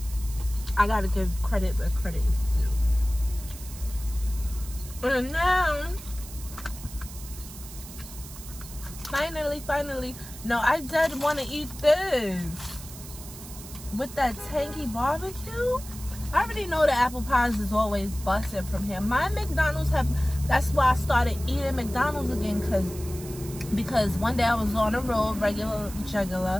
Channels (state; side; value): noise; right; hiss, 15 dB below the sound